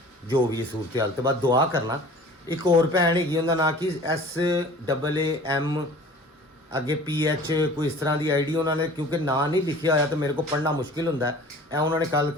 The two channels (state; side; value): normal; both; correlation 0.45